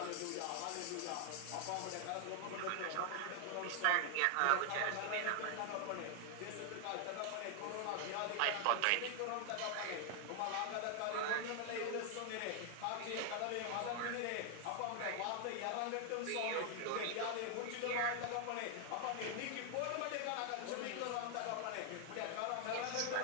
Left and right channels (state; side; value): different; both; correlation 0.00